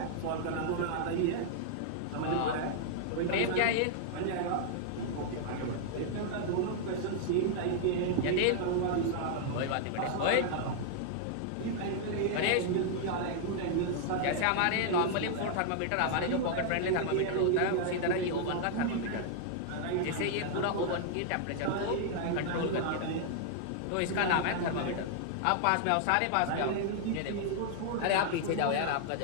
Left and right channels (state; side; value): different; both; correlation -0.01